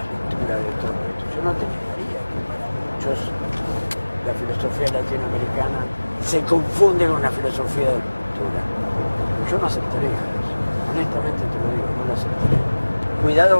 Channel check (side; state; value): both; inverted; correlation -1.00